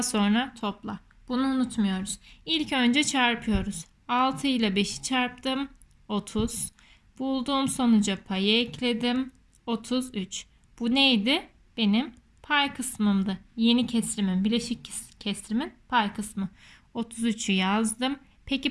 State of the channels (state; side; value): identical; both; correlation 1.00